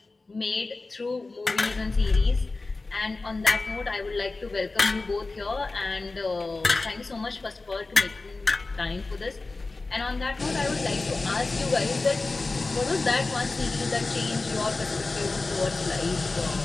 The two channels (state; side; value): quieter; right; 3.5 dB